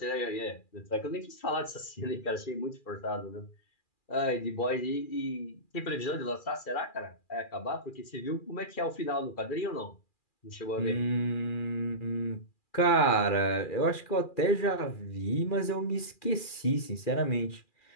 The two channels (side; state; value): right; late; 2.4 ms